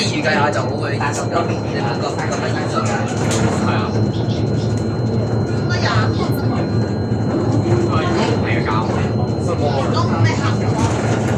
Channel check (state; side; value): identical; both; correlation 1.00